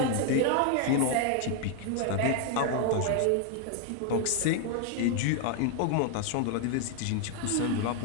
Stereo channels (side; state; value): both; different; correlation 0.00